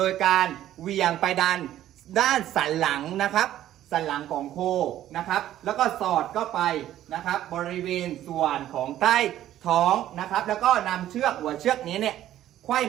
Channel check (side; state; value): left; quieter; 12.6 dB